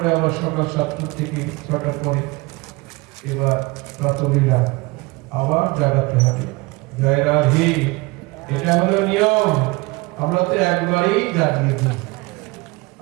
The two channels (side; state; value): left; quieter; 24.2 dB